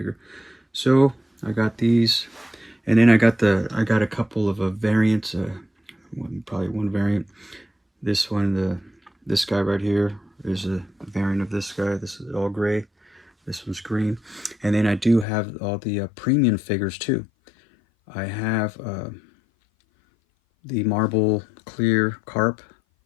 So I got these, and then I got a couple of variants. Probably one variant. This one, this guy right here is a variant of this guy. This is all gray. This one's green. And then I do have all the premium figures too. I have the marble clear carp.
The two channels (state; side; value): drops out; right; at 15.2 s